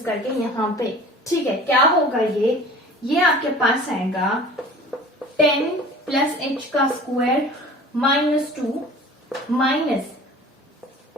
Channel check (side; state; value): both; normal; correlation 0.43